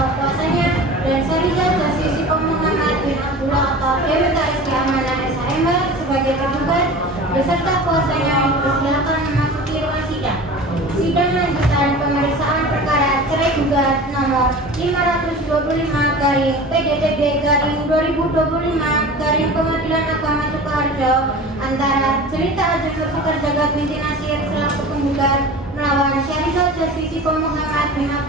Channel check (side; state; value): both; normal; correlation 0.36